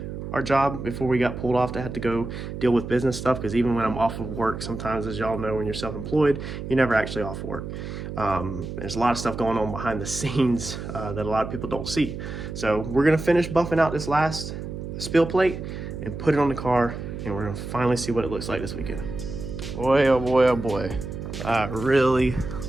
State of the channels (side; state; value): right; noise; hum, 8 dB below the sound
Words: our job before we got pulled off to have to go deal with business stuff, because even when I'm off of work, sometimes, as y'all know, when you're self-employed, you're never actually off work. There's a lot of stuff going on behind the scenes that a lot of people don't see. So we're gonna finish buffing out this last spill plate and put it on the car and we're gonna finally see what it looks like this weekend. Boy, oh boy, oh boy. I really